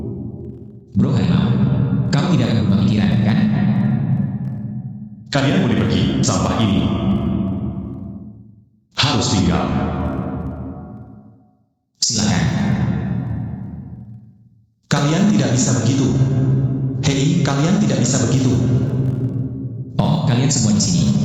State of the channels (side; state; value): both; identical; correlation 1.00